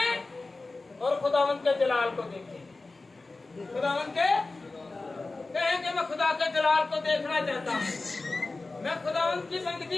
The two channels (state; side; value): quieter; right; 3.4 dB